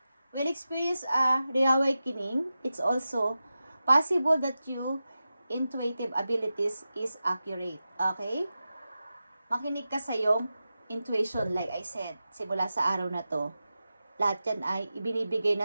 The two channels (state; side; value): inverted; both; correlation -0.93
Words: Will experience a reawakening. It's also possible that your intuitive abilities is accurate. Okay? Makinig ka sa iyong intuition, like I said, simula sa araw na to. Lahat yan ay ibinibigay